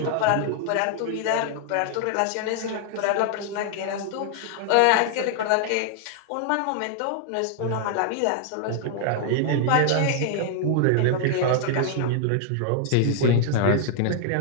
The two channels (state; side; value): different; both; correlation 0.00